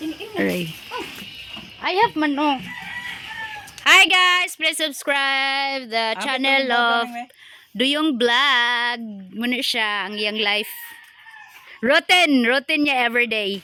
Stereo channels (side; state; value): both; identical; correlation 1.00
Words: Aray. I have mano. Hi guys, please subscribe the channel of Duyong Vlog. Muna siya ang iyang life. Rotten niya everyday.